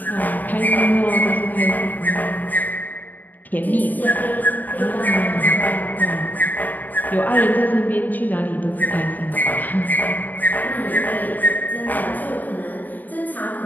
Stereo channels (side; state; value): right; late; 0.085 ms